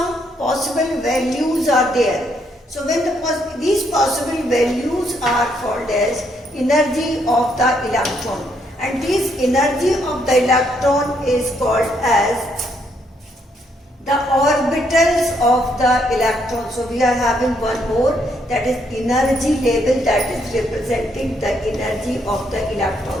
possible values are there. So when these possible values are called as energy of the electron, and this energy of the electron is called as the orbitals of the electron. So we are having one more, that is energy level, that is representing the energy of the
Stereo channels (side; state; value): both; normal; correlation 0.73